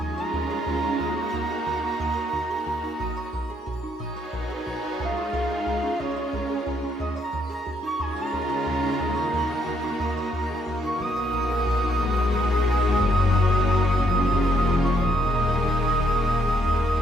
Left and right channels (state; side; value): normal; both; correlation 0.73